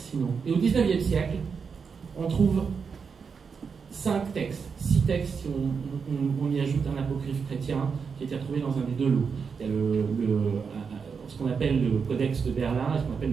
sinon? Et au XIXe siècle, on trouve 5 textes, 6 textes si on y ajoute un apocryphe chrétien qui a été retrouvé dans un des deux lots. Il y a ce qu'on appelle le Codex de Berlin et ce qu'on appelle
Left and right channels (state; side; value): quieter; left; 5.8 dB